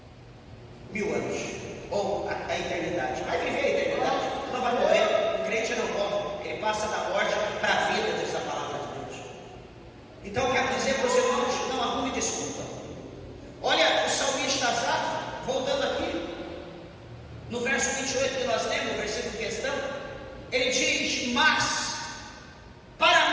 1000 anos, ou a eternidade. Vai viver a eternidade, não vai morrer. O crente não morre, ele passa da morte para a vida, diz a palavra de Deus. Então eu quero dizer para os irmãos, não arrume desculpa. Olha o salmista Asaf, voltando aqui, no verso 28 que nós lemos, o versículo em questão, ele diz: mas para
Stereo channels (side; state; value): both; identical; correlation 1.00